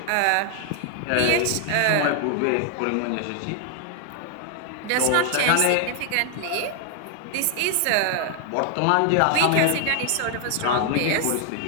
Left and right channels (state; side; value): different; both; correlation 0.00